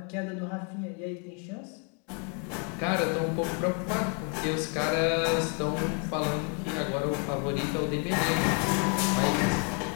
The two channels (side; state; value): right; quieter; 37.5 dB